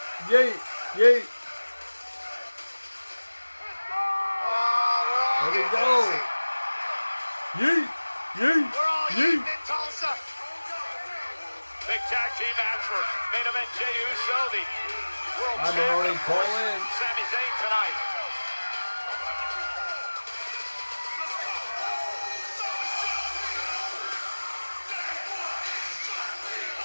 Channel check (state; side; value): inverted; both; correlation -1.00